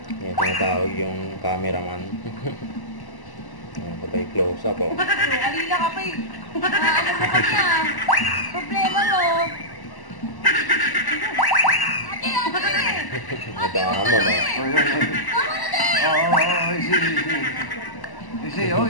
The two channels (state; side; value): late; right; 1.0 ms